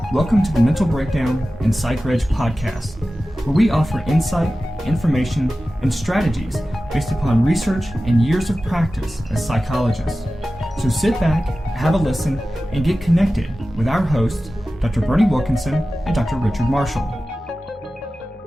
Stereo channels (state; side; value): normal; both; correlation 0.95